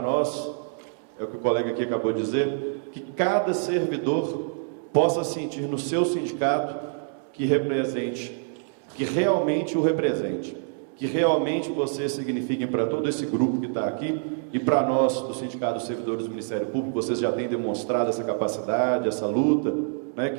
nós, é o que o colega aqui acabou de dizer, que cada servidor possa sentir no seu sindicato que represente, que realmente o represente, que realmente vocês signifiquem para todo esse grupo que está aqui e para nós, do Sindicato dos Servidores do Ministério Público, vocês já têm demonstrado essa capacidade, essa luta, né,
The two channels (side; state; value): left; silent; digital silence